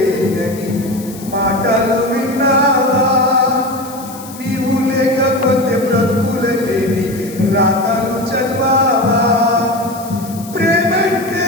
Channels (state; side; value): noise; left; hiss, 17 dB below the sound